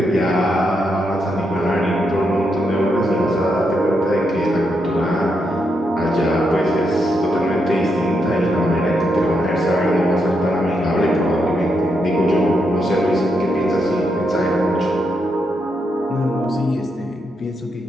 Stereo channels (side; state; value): both; normal; correlation 0.81